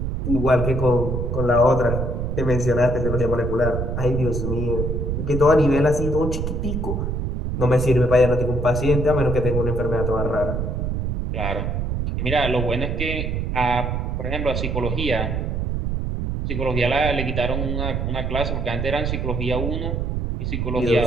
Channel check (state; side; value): noise; right; rumble, 1 dB below the sound